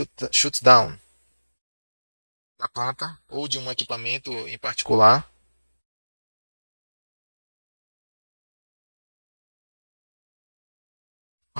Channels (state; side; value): inverted; both; correlation -1.00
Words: da planta ou de um equipamento em particular.